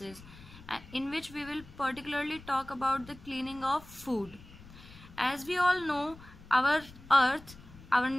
in which we will particularly talk about the cleaning of food. As we all know, our earth, our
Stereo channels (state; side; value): noise; left; rumble, 19 dB below the sound